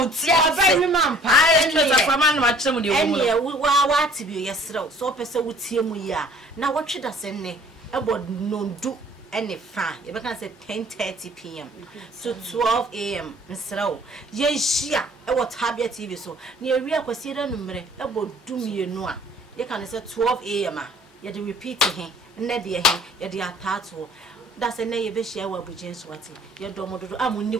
man what to be yesterday so person with him we are now what should I say about no do any fine you can say 10:30 p.m. to 12 a.m. Msrao yes yeah what Tabia TV so near we are consider number about do me no you can say 12 a.m. You do repeat him, Nedia him, you do a tattoo. That's a name you share with James Watty. You don't want to. I'm only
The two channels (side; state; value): both; normal; correlation 0.54